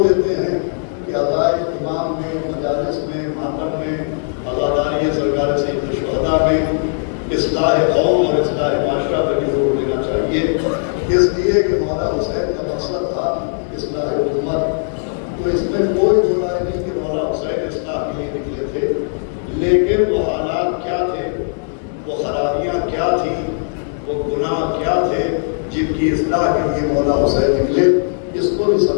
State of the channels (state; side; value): silent; right; digital silence